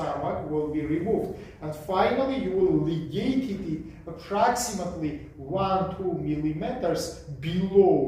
will be removed. And finally, you will ligate it approximately 1-2 millimeters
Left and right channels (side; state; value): both; identical; correlation 1.00